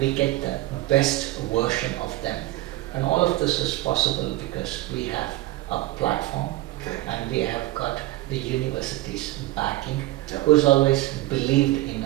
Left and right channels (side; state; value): left; quieter; 17.4 dB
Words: we get the best version of them. And all of this is possible because we have a platform and we have got the university's backing, who's always believed in